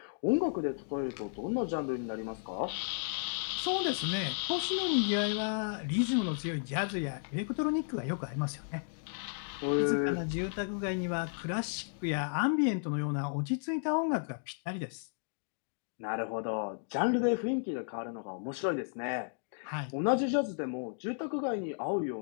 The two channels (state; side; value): silent; right; digital silence